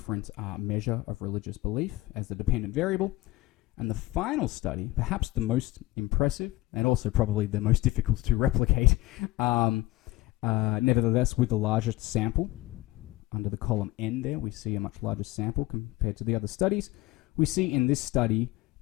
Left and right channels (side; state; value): right; quieter; 18.9 dB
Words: measure of religious belief as the dependent variable. And the final study, perhaps the most impressive and also probably the most difficult to replicate, nevertheless with the largest sample, under the column N there, we see a much larger sample compared to the other studies. We see in this study